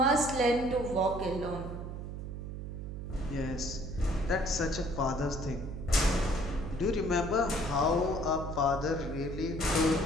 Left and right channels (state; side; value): noise; right; hum, 7 dB below the sound